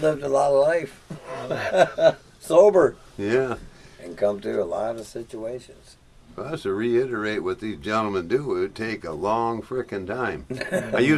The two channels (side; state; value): both; identical; correlation 1.00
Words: lived a lot of life. Sober. Yeah. and come through a lot of situations. For us to reiterate what these gentlemen do, it would take a long frickin' time. I